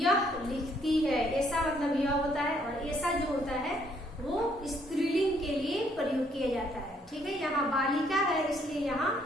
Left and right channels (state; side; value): normal; both; correlation 0.68